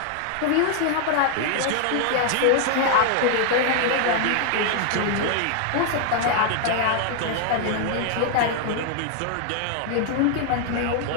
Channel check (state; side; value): different; both; correlation 0.00